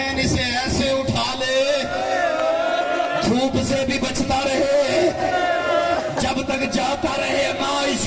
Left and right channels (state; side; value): identical; both; correlation 1.00